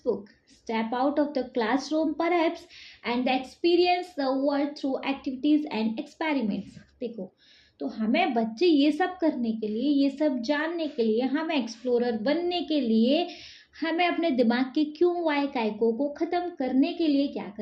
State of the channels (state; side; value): identical; both; correlation 1.00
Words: step out of the classroom perhaps, and experience the world through activities and experiments. देखो, तो हमें बच्चे ये सब करने के लिए, ये सब जानने के लिए, हमें एक्सप्लोरर बनने के लिए, हमें अपने दिमाग के क्यों वाई कायको को ख़त्म करने के लिए क्या